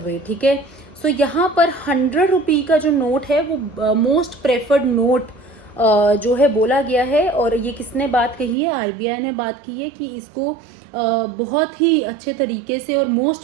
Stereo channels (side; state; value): left; drops out; at 8.6 s